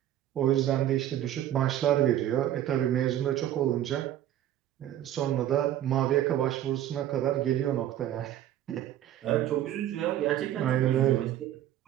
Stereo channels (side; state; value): left; quieter; 12.0 dB